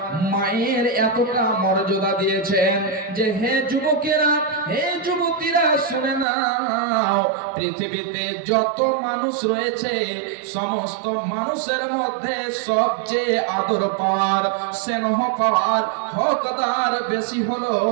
মায়ের এতটা মর্যাদা দিয়েছেন যে, হে যুবকেরা, হে যুবতীরা, শুনে নাও, পৃথিবীতে যত মানুষ রয়েছে সমস্ত মানুষের মধ্যে সবচেয়ে আদর পাওয়ার, স্নেহ পাওয়ার হকদার বেশি হলো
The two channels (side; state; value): left; drops out; at 6.2 s